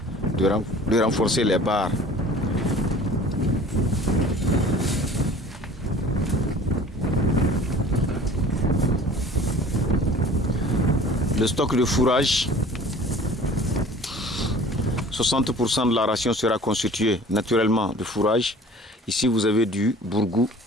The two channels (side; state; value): both; normal; correlation 0.47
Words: de renforcer les barres. Le stock de fourrage, 60% de la ration sera constituée naturellement de fourrage. Ici, vous avez du bourgou,